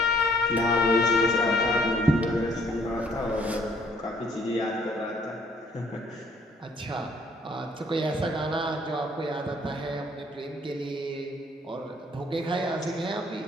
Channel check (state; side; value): normal; both; correlation 0.63